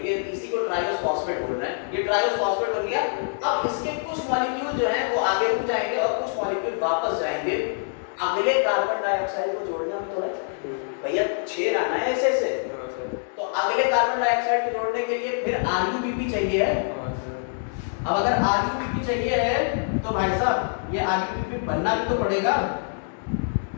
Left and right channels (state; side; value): silent; right; digital silence